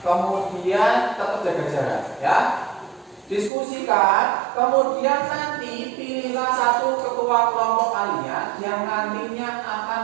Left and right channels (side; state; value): left; drops out; at 3.5 s